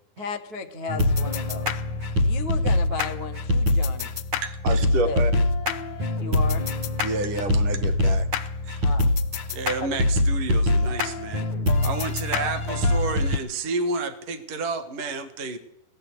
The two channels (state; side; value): late; left; 9.7 ms